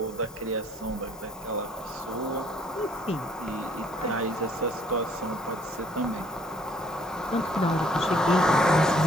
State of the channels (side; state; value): both; normal; correlation 0.61